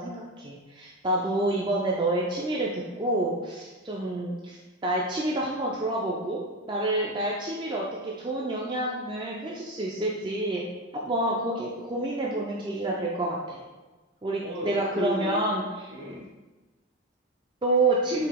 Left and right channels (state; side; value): normal; both; correlation 0.16